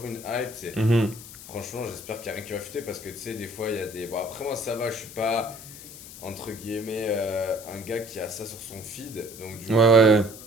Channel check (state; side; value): noise; left; hiss, 15 dB below the sound